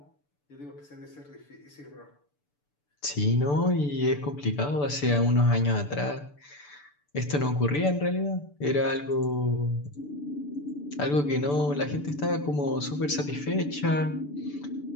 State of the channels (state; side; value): late; right; 6.9 ms